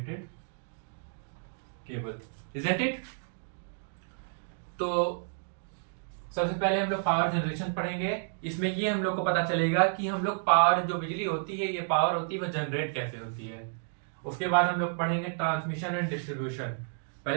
केबल। Isn't it? तो सबसे पहले हम लोग पावर जनरेशन पढ़ेंगे। इसमें ये हम लोग को पता चलेगा कि हम लोग पावर, जो बिजली होती है, ये पावर होती है, वह जनरेट कैसे होती है। उसके बाद हम लोग पढ़ेंगे ट्रांसमिशन एंड डिस्ट्रीब्यूशन।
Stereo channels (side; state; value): left; silent; digital silence